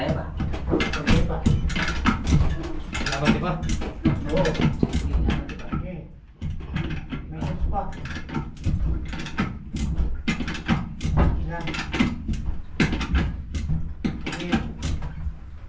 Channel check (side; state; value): both; identical; correlation 1.00